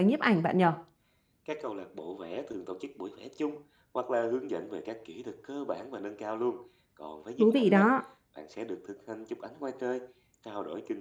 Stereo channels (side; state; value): both; identical; correlation 1.00